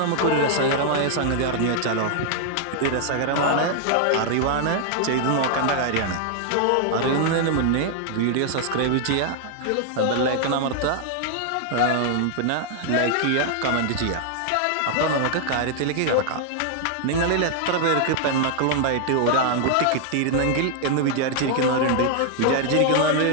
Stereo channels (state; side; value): different; both; correlation 0.00